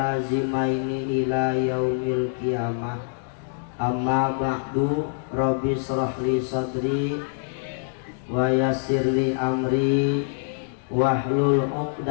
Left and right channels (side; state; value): right; silent; digital silence